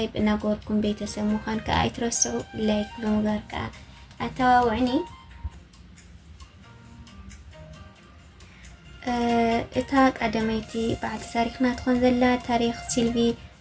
እናገበርኩም ቤተሰብ ምዃን ከዓ ኣይትረስዑ። ላይክ ብምግባር ከዓ ኣተዋውዕኒ። እታ ቀዳመይቲ በዓልቲ ታሪክና ትኾን ዘላ ታሪክ ሲልቪ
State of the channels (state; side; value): identical; both; correlation 1.00